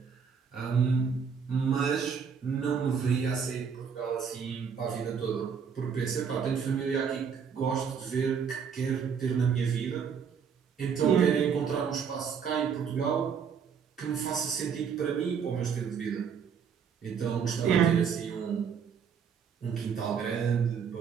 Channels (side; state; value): left; quieter; 6.7 dB